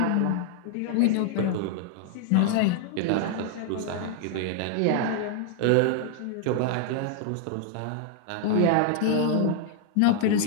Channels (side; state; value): both; different; correlation 0.00